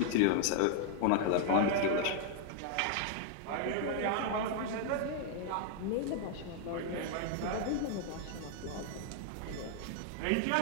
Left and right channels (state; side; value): different; both; correlation 0.00